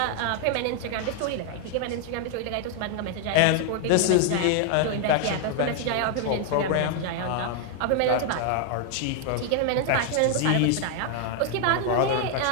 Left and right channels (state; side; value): different; both; correlation 0.00